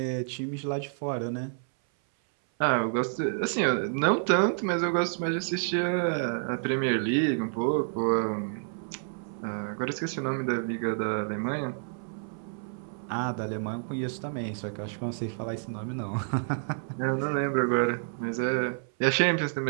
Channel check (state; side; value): silent; left; 58 dB below the other